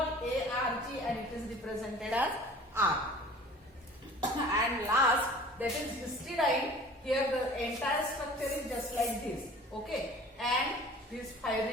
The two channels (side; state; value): both; normal; correlation 0.45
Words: and it is represented as R. And last, that is histidine. Here the entire structure is just like this. Okay. And this